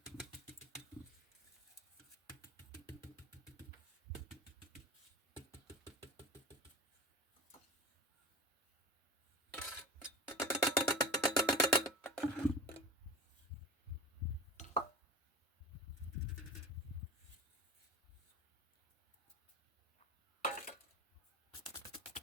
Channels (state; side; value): normal; both; correlation 0.33